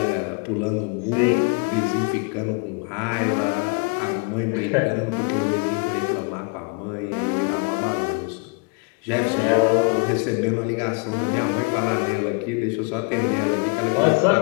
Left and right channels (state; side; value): quieter; right; 30.5 dB